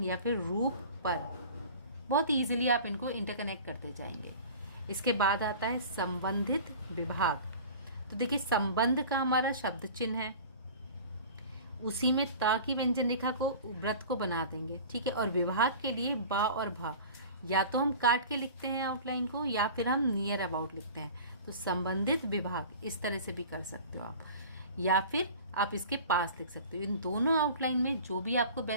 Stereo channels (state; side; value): inverted; both; correlation -0.40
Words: या फिर रूप पर बहुत ईजिली आप इनको इंटरकनेक्ट करते जाएंगे। इसके बाद आता है संबंधित विभाग। तो देखिए संबंध का हमारा शब्द चिन्ह है, उसी में ता की व्यंजन रेखा को व्रत को बना देंगे, ठीक है। और विभाग के लिए बा और भा या तो हम काट के लिखते हैं आउटलाइन को या फिर हम नियर अबाउट लिखते हैं। तो संबंधित विभाग इस तरह से भी कर सकते हो आप, या फिर आप इसके पास लिख सकते हो। इन दोनों आउटलाइन में जो भी आपको